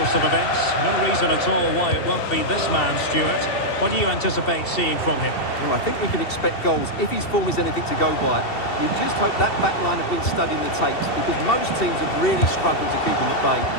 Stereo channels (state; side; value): late; right; 2.7 ms